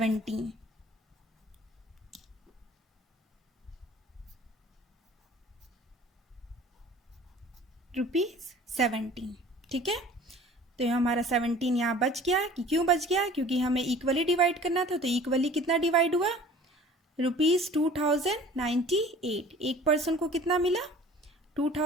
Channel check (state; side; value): normal; both; correlation 0.47